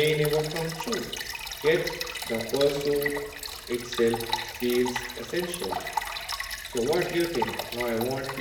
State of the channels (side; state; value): both; identical; correlation 1.00